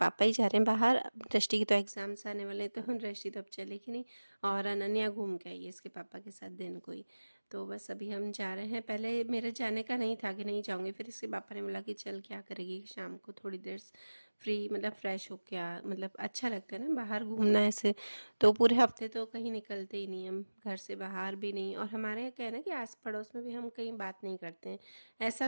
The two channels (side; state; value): both; inverted; correlation -1.00